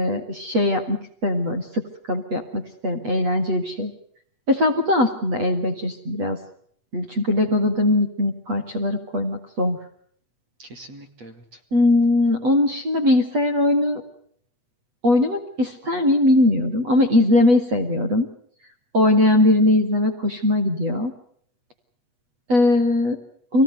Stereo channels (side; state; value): left; late; 8.2 ms